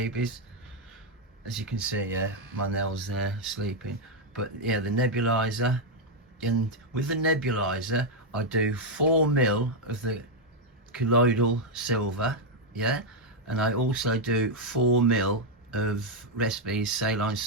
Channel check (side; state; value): both; normal; correlation 0.00